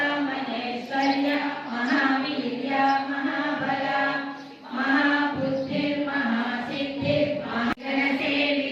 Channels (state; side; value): identical; both; correlation 1.00